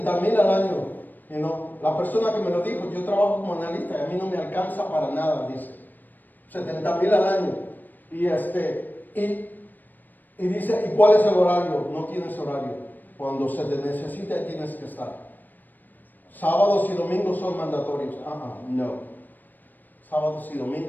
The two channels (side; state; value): right; late; 0.088 ms